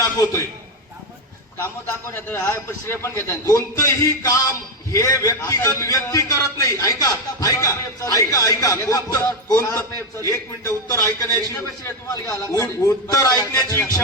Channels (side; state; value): both; normal; correlation 0.08